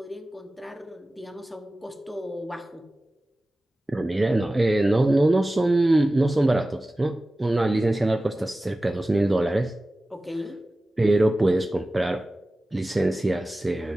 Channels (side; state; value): both; normal; correlation 0.96